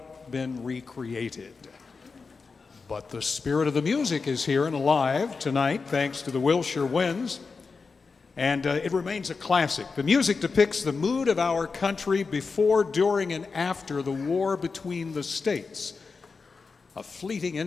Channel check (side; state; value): right; quieter; 4.6 dB